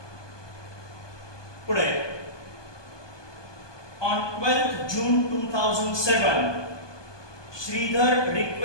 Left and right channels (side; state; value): right; late; 1.2 ms